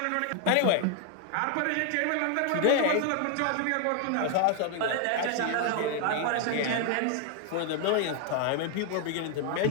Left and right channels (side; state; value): both; different; correlation 0.00